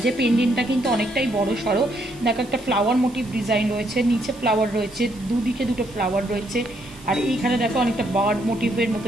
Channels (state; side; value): noise; right; hiss, 23 dB below the sound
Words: পেন্ডেন্টটা কিন্তু অনেকটাই বড় সড়ো, দেখো একটা ফ্লাওয়ার মোটিভ ডিজাইন রয়েছে, নিচে ফ্লাওয়ার রয়েছে, দুদিকে দুটো ফ্লাওয়ার রয়েছে, আর এইখানে দেখো অনেকটা বার্ড মোটিভের মতো